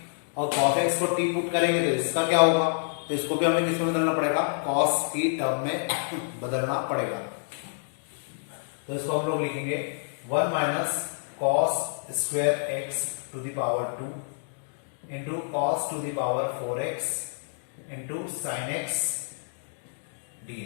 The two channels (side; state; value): right; silent; digital silence